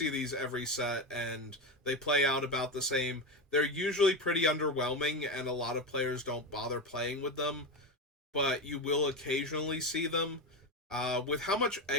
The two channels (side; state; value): both; normal; correlation 0.17